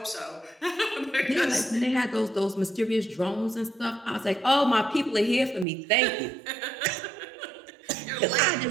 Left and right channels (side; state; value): left; drops out; at 5.7 s